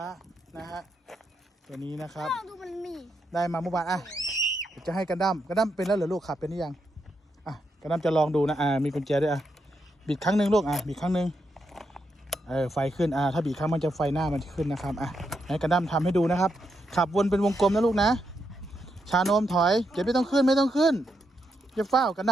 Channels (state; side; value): normal; both; correlation 0.82